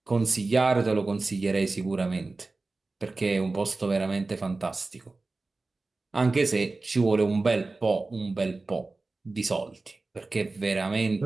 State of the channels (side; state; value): left; quieter; 3.5 dB